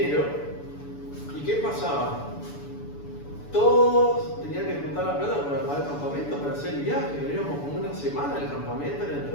¿Y qué pasaba? Todos tenían que juntar la plata para pagar el campamento, para hacer el viaje. Veníamos como una semana al campamento en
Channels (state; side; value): late; right; 6.9 ms